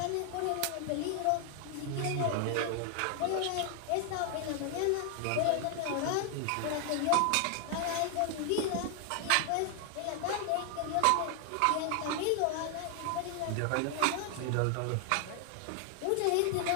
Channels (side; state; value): both; different; correlation 0.00